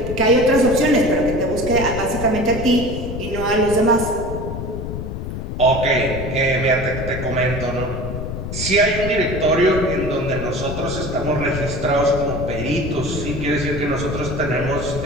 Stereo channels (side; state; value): left; noise; rumble, 6 dB below the sound